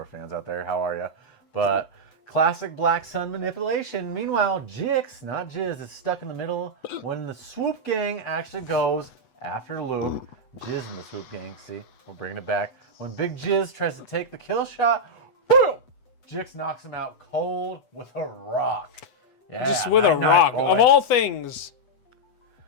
fans out there. How are you? But classic Black Sun manipulation. Meanwhile, Jix, not Jizz, is stuck in the middle when the swoop gang actually goes after Luke. Jizz in the swoop gang. See, we're bringing it back. When Big Jizz tries to take the kill shot, boom! Jix knocks him out cold with a rock. Yeah, Just with a rock. boy. Of all things,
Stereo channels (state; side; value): late; right; 8.1 ms